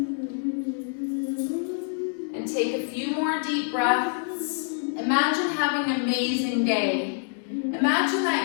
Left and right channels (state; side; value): silent; right; 61 dB below the other